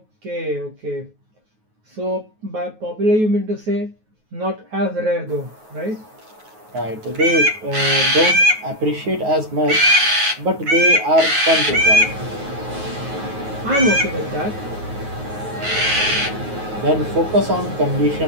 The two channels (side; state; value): left; late; 9.4 ms